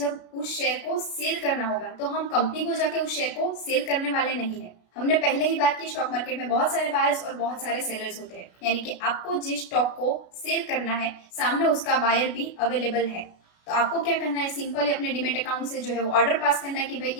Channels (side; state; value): right; late; 32 ms